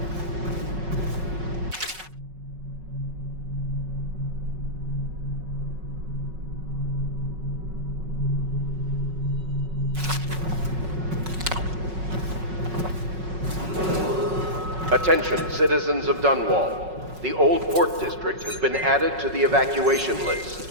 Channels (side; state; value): left; late; 5.4 ms